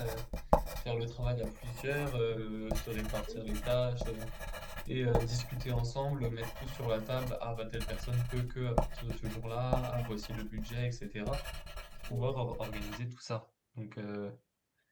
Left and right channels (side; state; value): both; identical; correlation 1.00